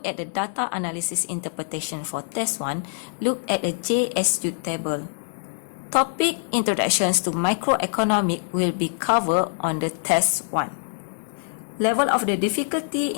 at the data analysis interpretation for test 1, look at the JSU table. Topic introductions to microeconomic will be covered on the test 1. Level of the difficulty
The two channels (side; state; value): right; silent; 55 dB below the other